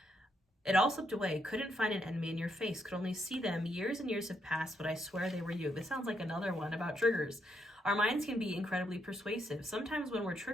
It all slipped away. Couldn't find an enemy in your face. Could only see them. Years and years have passed, but I swear they were you. This sounds like another one about triggers. Our minds can be incredibly persuasive. Sometimes when we're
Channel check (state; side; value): normal; both; correlation 0.77